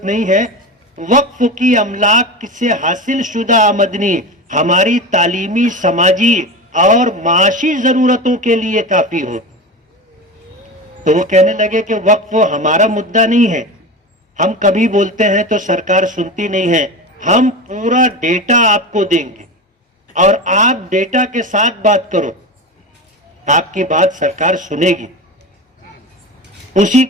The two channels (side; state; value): both; normal; correlation 0.25